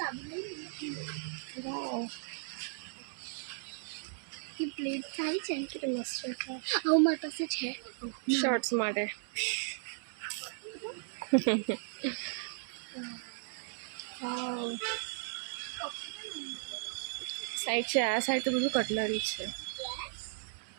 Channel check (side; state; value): left; silent; digital silence